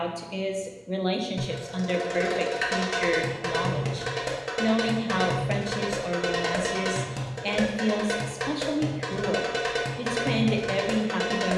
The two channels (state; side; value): identical; both; correlation 1.00